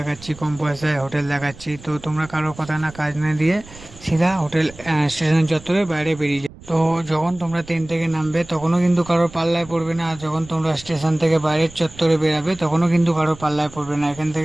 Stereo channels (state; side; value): noise; right; rumble, 19 dB below the sound